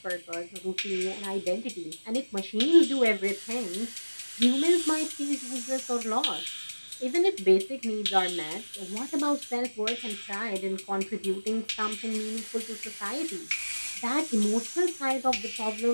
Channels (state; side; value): inverted; both; correlation -1.00